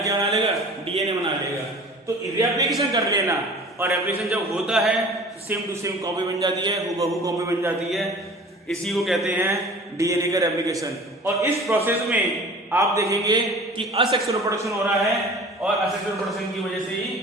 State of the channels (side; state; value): both; normal; correlation 0.43